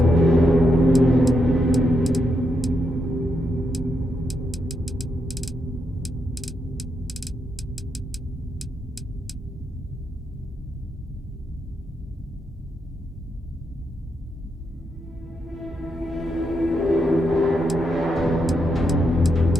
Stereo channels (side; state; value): both; normal; correlation 0.82